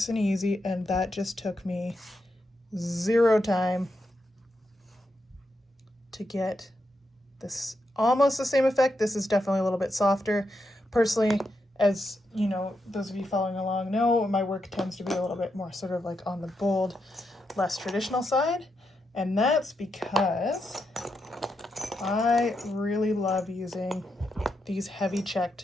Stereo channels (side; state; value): both; normal; correlation 0.84